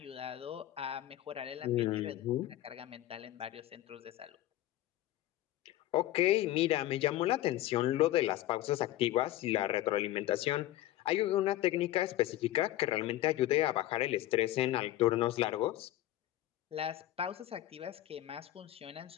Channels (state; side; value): quieter; right; 14.7 dB